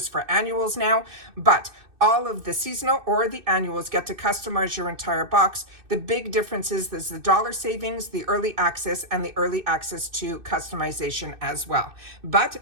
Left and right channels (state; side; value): late; left; 2.6 ms